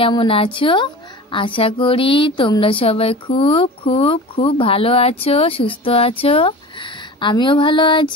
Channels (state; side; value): normal; both; correlation 0.35